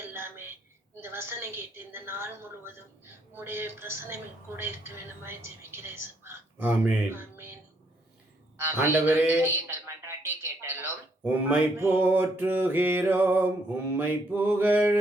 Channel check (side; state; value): both; normal; correlation 0.71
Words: எல்லாமே. இந்த வசனம் கேட்டு இந்த நாள் முழுவதும் உங்களுடைய பிரசனம் கூட இருக்க வேண்டுமாய் ஜெபிக்கிறேன் ஏசப்பா. ஆமென். ஆமென். ஆண்டவரே, எங்கள் மன்றாட்டை கேட்டலும். உம்மை போற்றுகிறோம், உம்மை